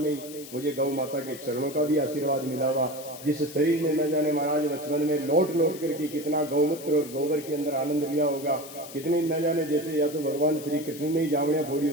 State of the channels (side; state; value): left; noise; hiss, 15 dB below the sound